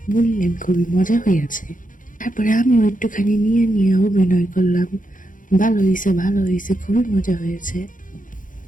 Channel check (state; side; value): late; right; 0.38 ms